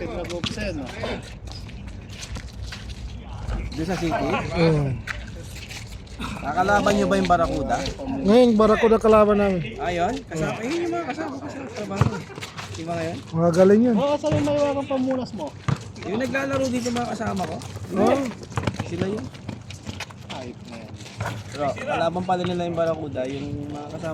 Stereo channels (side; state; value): both; identical; correlation 1.00